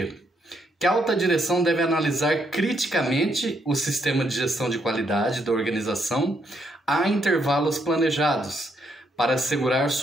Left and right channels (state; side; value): normal; both; correlation 0.74